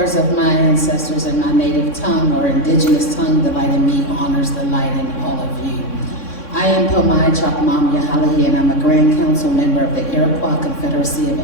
of my ancestors in my native tongue or indigenous tongue, the light in me honors the light in all of you. I am Pomai Chapmam Yahalahi, and I'm a Grand Council member of the Iroquois Confederacy of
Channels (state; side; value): late; right; 3.6 ms